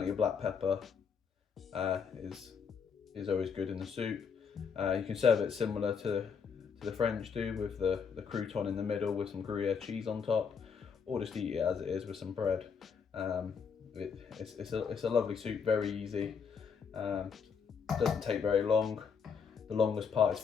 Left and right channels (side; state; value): right; quieter; 6.3 dB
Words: of black pepper is always good in the soup. You can serve it similar to the French do, with the crouton in the middle with some Gruyere cheese on top, or just eat it as it is with some bread. It's a lovely soup, very easy. Doesn't take very long. The longest part is